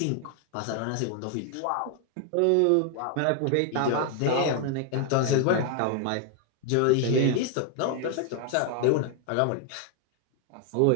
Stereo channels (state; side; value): different; both; correlation 0.00